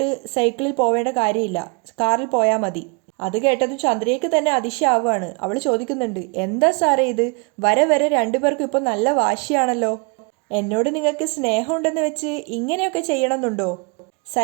സൈക്കിളിൽ പോവേണ്ട കാര്യമില്ല, കാറിൽ പോയാൽ മതി. അത് കേട്ടതും ചന്ദ്രയ്ക്ക് തന്നെ അതിശയാവുകയാണ്. അവൾ ചോദിക്കുന്നുണ്ട്, എന്താ സാറേ ഇത്? വരെ രണ്ടുപേർക്കും ഇപ്പോൾ നല്ല വാശിയാണല്ലോ. എന്നോട് നിങ്ങൾക്ക് സ്നേഹമുണ്ടെന്ന് വെച്ച് ഇങ്ങനെയൊക്കെ ചെയ്യണമെന്നുണ്ടോ?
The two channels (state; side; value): quieter; left; 33.9 dB